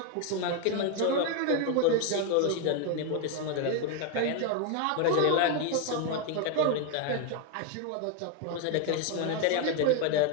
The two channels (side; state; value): both; different; correlation 0.01